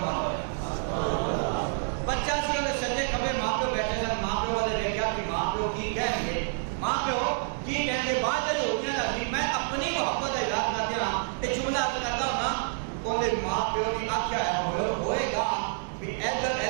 ہو جائے بچہ سی انہیں سجے کھبے ماں پیو بیٹھے سن ماں پیو والے دیکھا کہ ماں پیو کی کہیں گے ماں پیو کی کہیں گے بعد جو ہوتی ہے میں اپنی محبت کا اظہار کر دیا یہ جملہ عرض کرتا ہوں نا انہیں ماں پیو نے آخیا ہے ہوئے گا کہ ادھر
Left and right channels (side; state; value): left; silent; 59 dB below the other